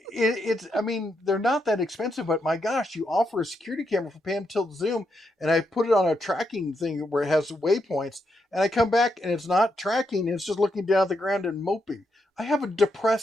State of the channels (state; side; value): normal; both; correlation 0.81